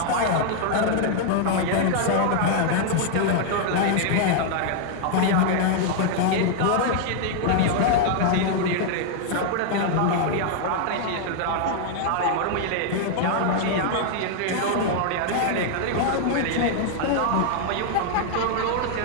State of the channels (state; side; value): different; both; correlation 0.00